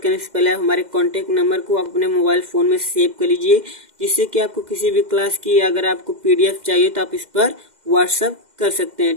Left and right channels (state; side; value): late; left; 2.0 ms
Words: से पहले आप हमारे कॉन्टैक्ट नंबर को आप अपने मोबाइल फ़ोन में सेव कर लीजिए, जिससे कि आपको किसी भी क्लास की अगर आपको PDF चाहिए तो आप इस पर व्हाट्सअप कर सकते